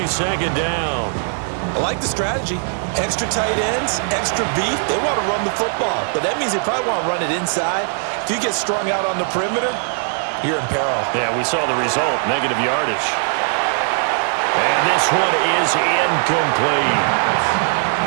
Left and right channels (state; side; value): silent; left; 56 dB below the other